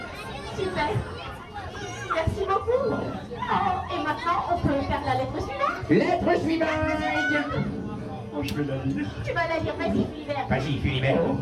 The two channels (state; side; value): identical; both; correlation 1.00